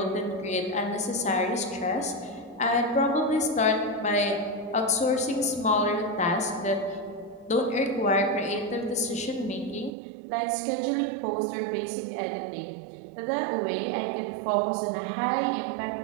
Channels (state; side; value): drops out; left; at 9.9 s